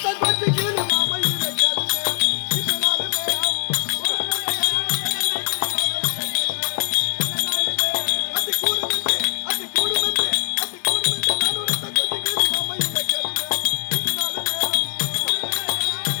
கொஞ்சம் கீழ் மாமை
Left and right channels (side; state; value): right; silent; digital silence